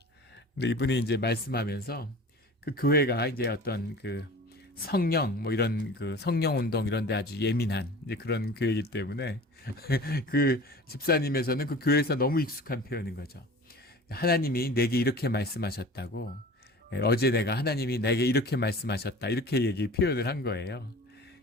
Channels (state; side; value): normal; both; correlation 0.40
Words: 근데 이분이 이제 말씀하면서 그 교회가 이제 어떤 그 성령 뭐 이런 그 성령 운동 이런 데 아주 예민한 이제 그런 교회이기 때문에 그 집사님에서는 그 교회에서 너무 익숙한 표현인 거죠. 하나님이 내게 이렇게 말씀하셨다고, 어제 내가 하나님이 내게 이렇게 말씀하셨다, 이렇게 표현을 한 거예요.